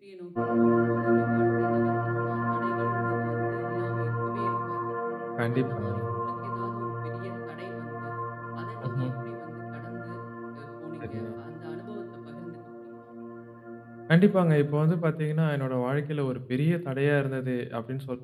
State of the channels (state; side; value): identical; both; correlation 1.00